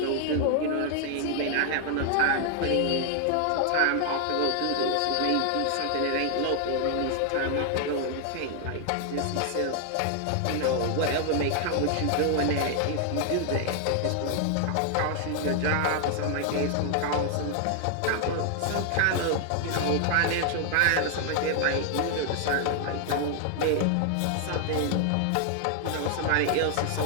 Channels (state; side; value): different; both; correlation 0.00